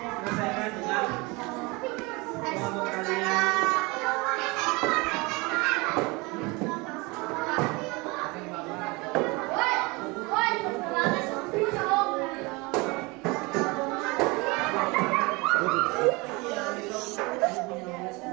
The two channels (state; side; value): quieter; left; 25.7 dB